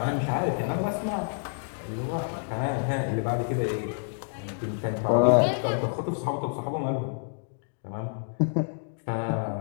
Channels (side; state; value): right; silent; digital silence